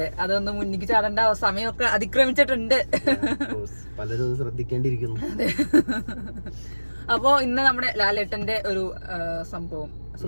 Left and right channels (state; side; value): inverted; both; correlation -1.00